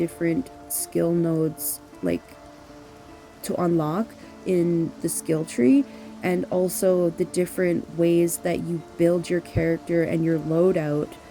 skill nodes like to unlock in the skill tree, and also the different ways that you build your character and your loadout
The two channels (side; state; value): both; identical; correlation 1.00